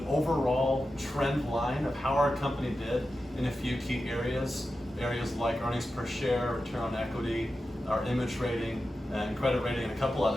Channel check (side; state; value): both; normal; correlation 0.92